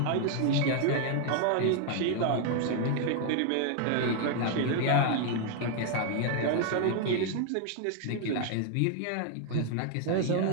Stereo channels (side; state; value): both; different; correlation 0.00